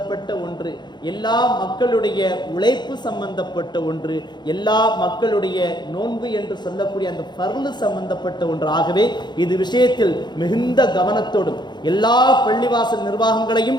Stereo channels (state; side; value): late; right; 0.21 ms